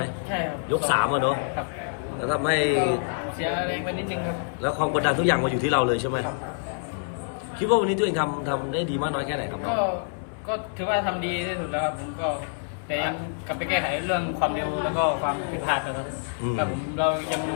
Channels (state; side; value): silent; right; 61 dB below the other